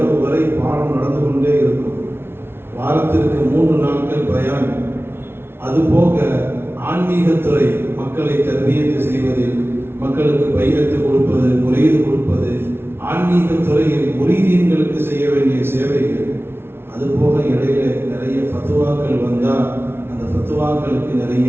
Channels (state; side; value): late; left; 0.12 ms